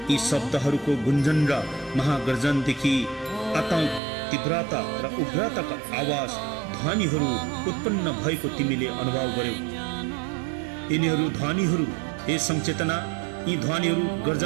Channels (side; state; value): left; drops out; at 4.0 s